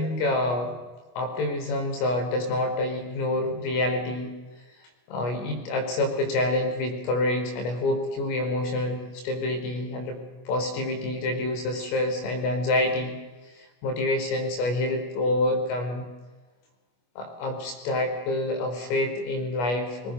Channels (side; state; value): right; late; 25 ms